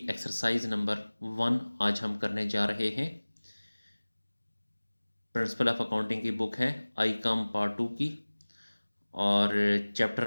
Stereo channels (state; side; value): inverted; both; correlation -1.00